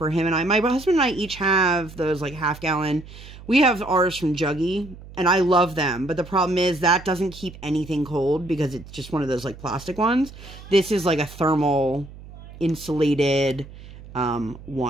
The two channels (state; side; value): noise; right; hum, 17 dB below the sound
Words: him and I. My husband and I each have those like half-gallon. We have ours from Juggy, and I love them. But the problem is that doesn't keep anything cold because it's just one of those like plastic ones. This is like a thermal insulated